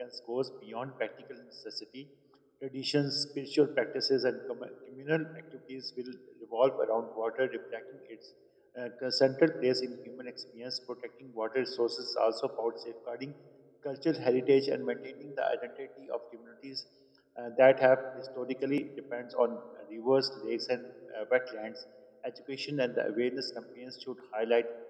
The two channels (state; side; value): identical; both; correlation 1.00